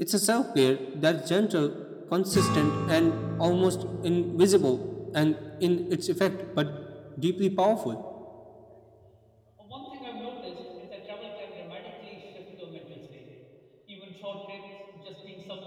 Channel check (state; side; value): identical; both; correlation 1.00